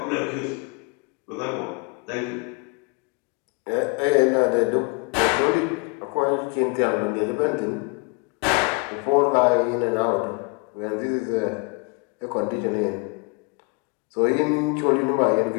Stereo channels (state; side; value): quieter; right; 31.4 dB